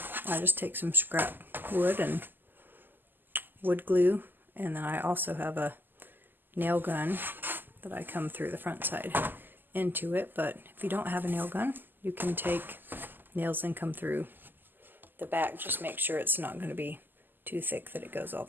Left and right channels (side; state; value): left; late; 0.091 ms